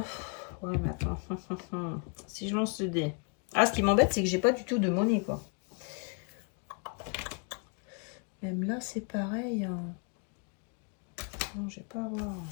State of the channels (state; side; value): quieter; right; 38.2 dB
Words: mais attends. Si je lance le dé. Ah, ce qui m'embête, c'est que j'ai pas du tout de monnaie, quoi. Même là, c'est pareil. Hein. Non, je vais pas avoir.